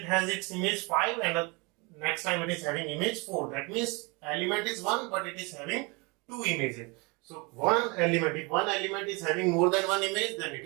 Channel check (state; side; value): quieter; left; 28.4 dB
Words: has its image 5 and the next time it is having image 4. That means element is 1 but it is having two images. So one element, if one element is having more than one image, then it